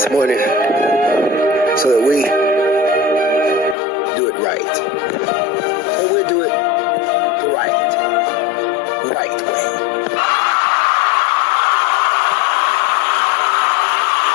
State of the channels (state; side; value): drops out; right; at 3.8 s